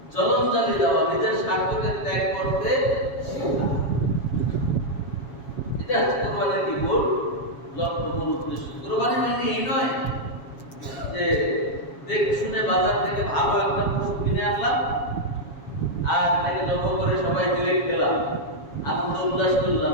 জলঞ্জলি দেওয়া, নিজের স্বার্থকে ত্যাগ করতে শেখা। এটা হচ্ছে কোরবানির কি মূল লক্ষ্য, মূল উদ্দেশ্য। কোরবানি মানে এই নয় যে দেখে শুনে বাজার থেকে ভালো একটা পশু কিনে আনলাম আর তাকে জব করে সবাই মিলে খেলাম, আনন্দ উল্লাস করলাম,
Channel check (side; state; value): right; late; 7.2 ms